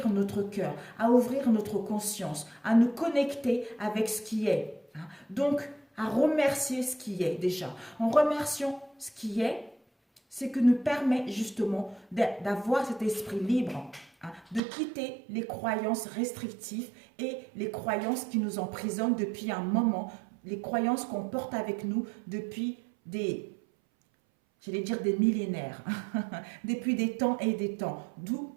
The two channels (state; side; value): drops out; left; at 14.6 s